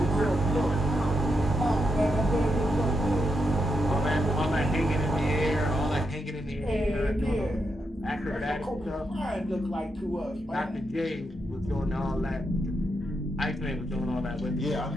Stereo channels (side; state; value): both; normal; correlation 0.83